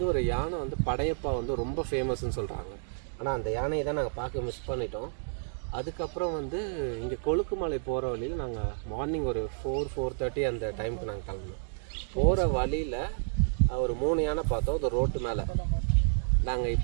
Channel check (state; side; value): silent; left; digital silence